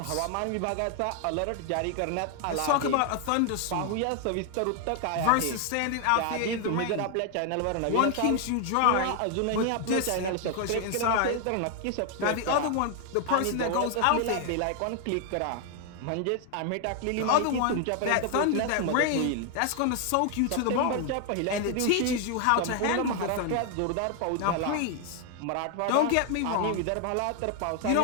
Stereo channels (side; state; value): both; different; correlation 0.00